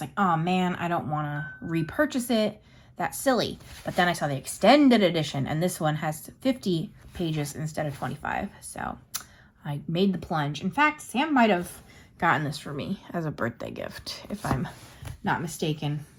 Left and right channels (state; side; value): identical; both; correlation 1.00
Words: like, oh man, I don't want to repurchase it. That's silly. But then I saw the extended edition, and this one has 50 pages instead of 25. So I made the plunge. In fact, Sam might have gotten this for me as a birthday gift, if I'm not mistaken.